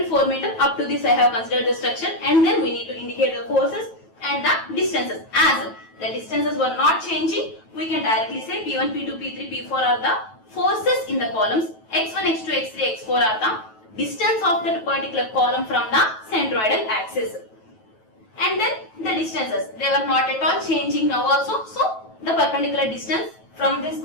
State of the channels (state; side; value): late; right; 9.2 ms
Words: and 4 meter, up to this I have considered the structure, and then we need to indicate the forces and the distances. As the distances were not changing, we can directly say P1, P2, P3, P4 are the forces in the columns. X1, X2, X3, X4 are the distance of that particular column from the centroidal axis. And then the distances, they were not at all changing now also. So the perpendicular distance from this